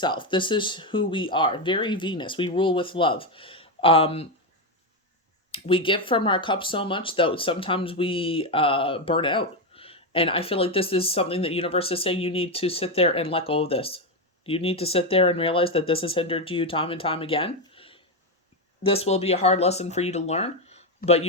This is who we are. Very Venus. We rule with love. We give from our cup so much that sometimes we burn out. And I feel like this is something that universe is saying you need to sit there and let go of this. You need to sit there and realize that this has hindered you time and time again. This will be a hard lesson for you to learn, but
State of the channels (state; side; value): normal; both; correlation 0.09